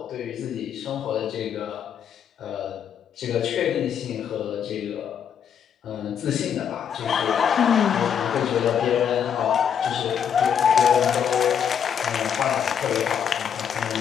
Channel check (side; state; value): right; quieter; 8.2 dB